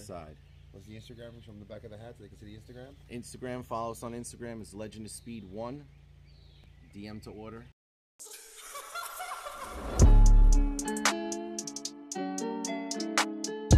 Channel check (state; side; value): identical; both; correlation 1.00